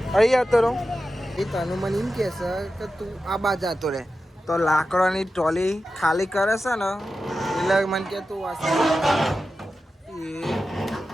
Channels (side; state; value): both; normal; correlation 0.92